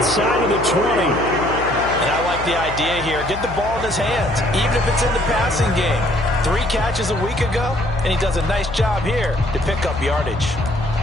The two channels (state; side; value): noise; left; hum, 11 dB below the sound